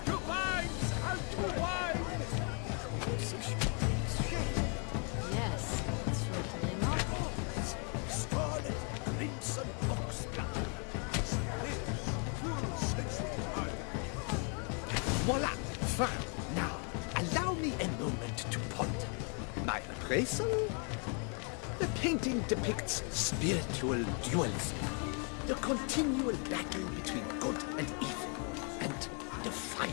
To vines and to wine! Composition takes shape. Yes, it's sure to be a masterpiece. Scarlet, crimson, oxblood. Voila! Fine. Now, allow me a moment to ponder. My appraisal? The painting depicts spiritual dualism. The continual battle between good and evil. And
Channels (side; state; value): right; quieter; 38.3 dB